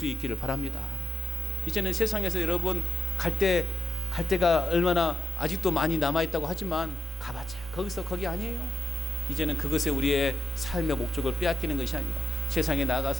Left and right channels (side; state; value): both; normal; correlation 0.88